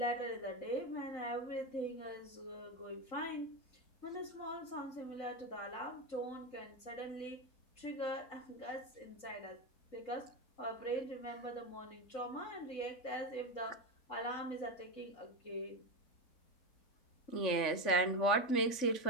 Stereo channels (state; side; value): late; right; 3.5 ms